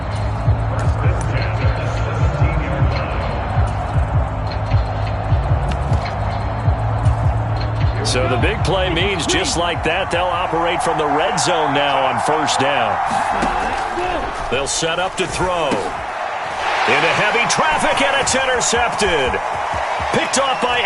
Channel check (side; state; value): both; identical; correlation 1.00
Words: So the big play means just like that, they'll operate from the red zone now on first down. They'll set up to throw. Into heavy traffic, and it's intercepted. Picked off by